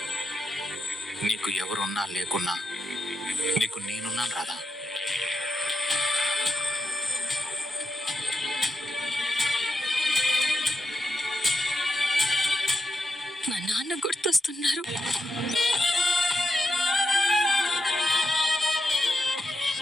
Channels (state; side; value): normal; both; correlation 0.85